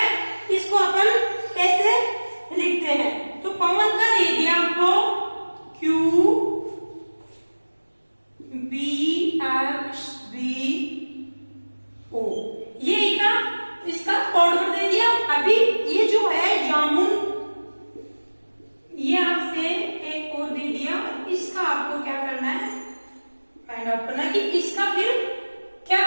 इसको अपन कैसे लिखते हैं। तो पवन का दे दिया आपको Q B X B O, ये इसका कोड वर्ड दे दिया। अभी ये जो है जामुन, ये आपसे एक और दे दिया, इसका आपको क्या करना है, फाइंड आउट करना कि इसका फिर क्या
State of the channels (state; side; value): inverted; both; correlation -1.00